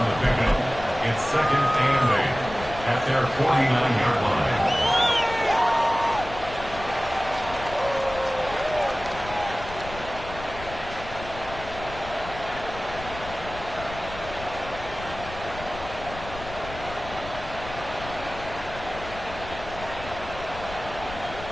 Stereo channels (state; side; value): noise; left; rumble, 13 dB below the sound